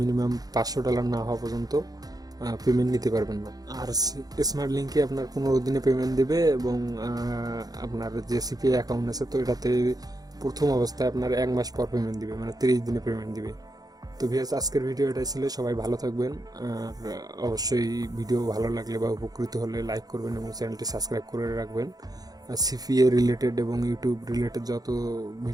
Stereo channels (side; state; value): left; late; 0.18 ms